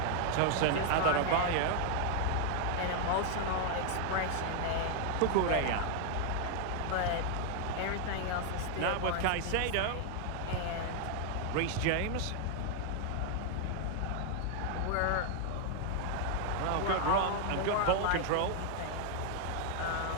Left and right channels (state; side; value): different; both; correlation 0.00